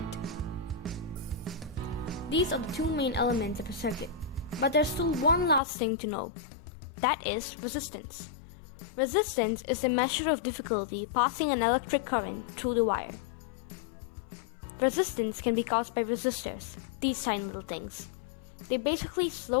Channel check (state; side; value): drops out; right; at 5.6 s